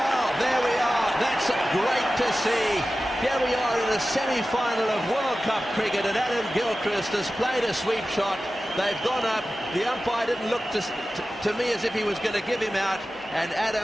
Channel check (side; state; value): both; normal; correlation 0.95